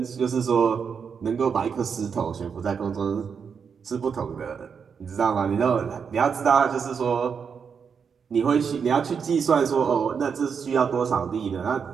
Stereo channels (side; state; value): left; quieter; 6.4 dB